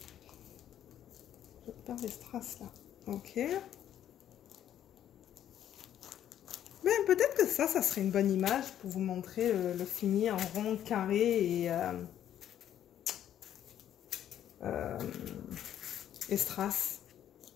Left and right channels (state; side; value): quieter; right; 10.7 dB